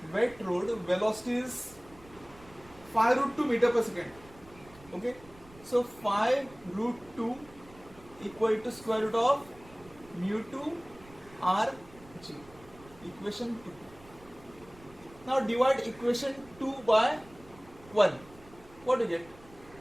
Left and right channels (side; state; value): right; noise; rumble, 23 dB below the sound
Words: velocity is 5 root 2 meter per second. Okay, so 5 root 2 equal to square root of mu 2 r g. Equation 2. Now divide equation 2 by 1. What do you get?